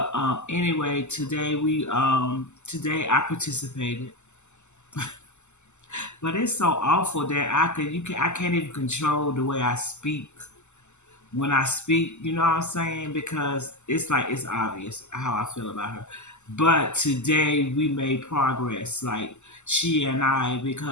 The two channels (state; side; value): late; right; 0.83 ms